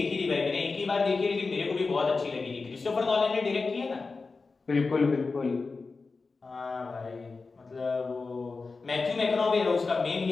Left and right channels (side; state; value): right; quieter; 4.1 dB